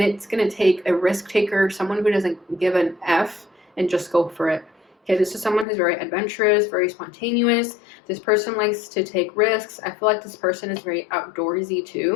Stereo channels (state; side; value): drops out; right; at 5.7 s